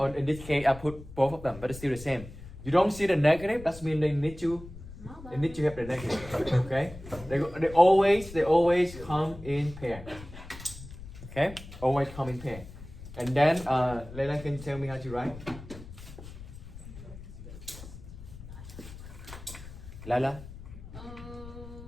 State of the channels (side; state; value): left; noise; rumble, 14 dB below the sound